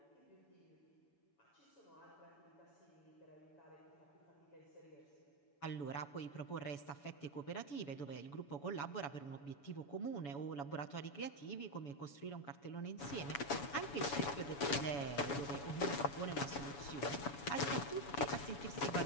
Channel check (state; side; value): late; right; 7.1 ms